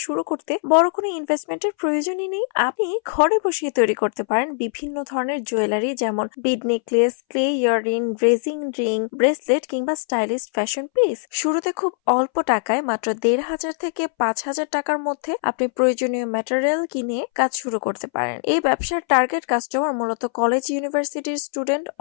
শুরু করতে বড় কোনো ইনভেস্টমেন্টের প্রয়োজনই নেই। আপনি ঘরে বসিয়ে তৈরি করতে পারেন বিভিন্ন ধরনের জুয়েলারি, যেমন bead necklace, clay earring, resin ring, bracelet কিংবা স্টাইলিশ ফ্যাশন পিস। শুরুতে খুব অল্প টাকায়, মাত্র ১,৫০০ থেকে ৫,০০০ টাকার মধ্যে আপনি প্রয়োজনীয় ম্যাটেরিয়াল কিনে কাজ শুরু করতে পারেন। এই ব্যবসার টার্গেট কাস্টমার মূলত কলেজ, ইউনিভার্সিটির স্টুডেন্ট,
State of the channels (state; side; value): silent; right; 63 dB below the other